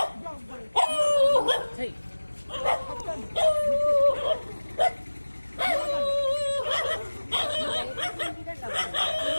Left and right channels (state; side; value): inverted; both; correlation -1.00